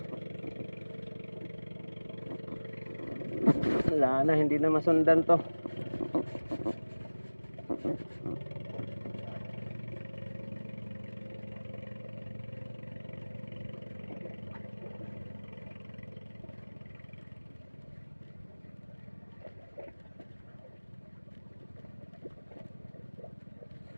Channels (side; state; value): both; inverted; correlation -1.00